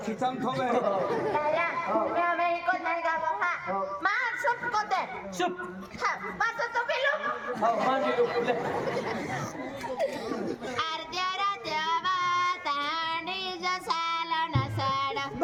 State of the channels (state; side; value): identical; both; correlation 1.00